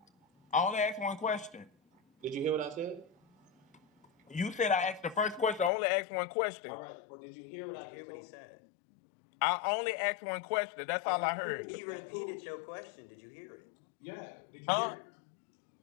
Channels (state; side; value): drops out; right; at 5.7 s